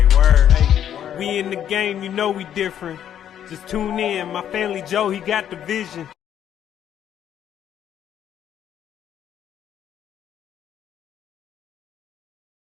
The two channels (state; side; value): quieter; right; 10.0 dB